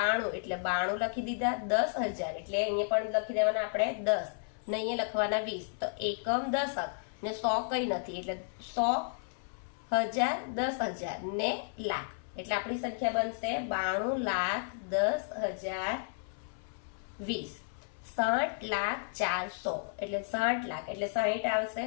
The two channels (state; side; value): silent; right; 56 dB below the other